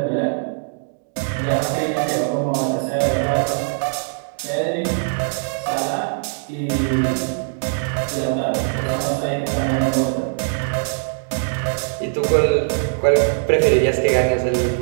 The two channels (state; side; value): silent; left; digital silence